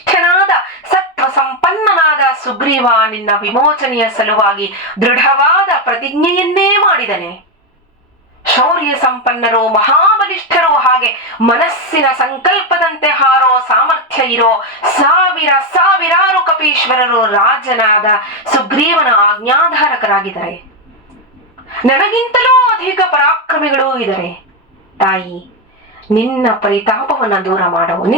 ಸತ್ವ ಸಂಪನ್ನನಾದ ಸುಗ್ರೀವ ನಿನ್ನ ವಿಮೋಚನೆಯ ಸಲುವಾಗಿ ದೃಢವಾದ ಪ್ರತಿಜ್ಞೆಯನ್ನೇ ಮಾಡಿದನೆ. ಶೌರ್ಯ ಸಂಪನ್ನರು, ಮಹಾಬಲಿಷ್ಠರು, ಹಾಗೆ ಮನಸ್ಸಿನ ಸಂಕಲ್ಪದಂತೆ ಹಾರೋ ಸಾಮರ್ಥ್ಯ ಇರೋ ಸಾವಿರಾರು ಕಪೀಶ್ವರರು ರಾಜನಾದ ಸುಗ್ರೀವನ ಆಜ್ಞಾಧಾರಕರಾಗಿದ್ದಾರೆ. ನನಗಿಂತಲೂ ಅಧಿಕ ಪರಾಕ್ರಮಿಗಳೂ ಇದ್ದಾರೆ. ತಾಯಿ, ನಿನ್ನ ಪರಿತಾಪವನ್ನ ದೂರ ಮಾಡವು,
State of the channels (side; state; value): both; normal; correlation 0.08